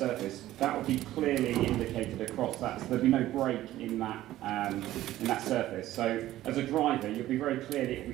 that would be clearly indicated across that. So there'd be no break in that surface. So as a driver, you'll be very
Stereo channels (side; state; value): left; quieter; 14.6 dB